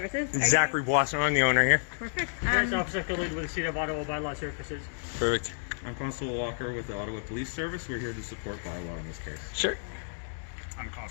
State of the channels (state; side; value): silent; right; digital silence